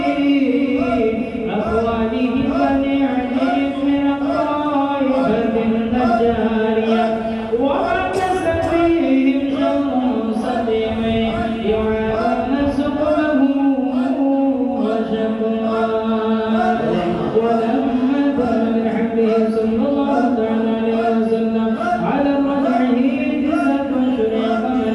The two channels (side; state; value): both; identical; correlation 1.00